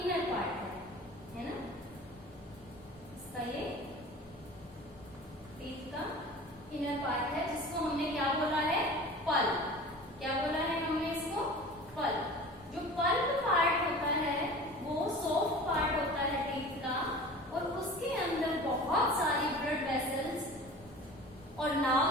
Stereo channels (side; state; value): both; normal; correlation 0.39